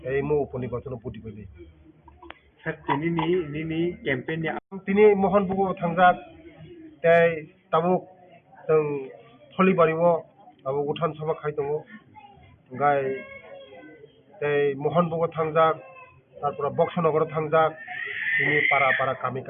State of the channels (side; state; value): both; identical; correlation 1.00